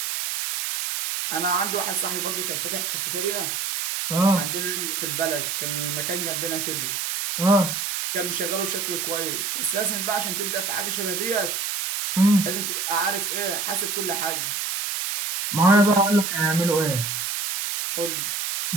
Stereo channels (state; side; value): noise; right; hiss, 2 dB below the sound